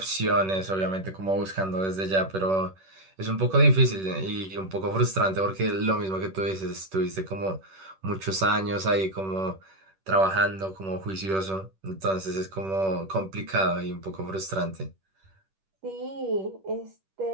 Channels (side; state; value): left; late; 10 ms